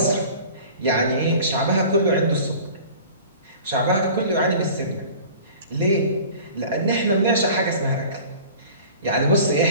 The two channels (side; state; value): both; inverted; correlation -0.43